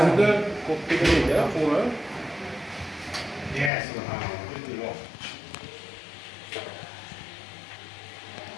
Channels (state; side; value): drops out; right; at 3.7 s